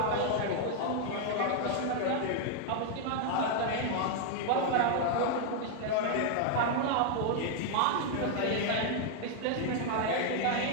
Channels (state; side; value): different; both; correlation 0.00